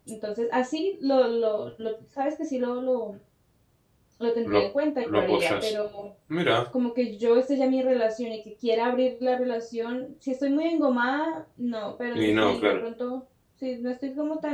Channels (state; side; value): identical; both; correlation 1.00